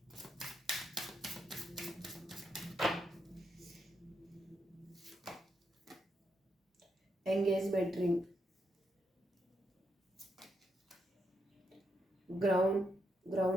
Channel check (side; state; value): both; normal; correlation 0.81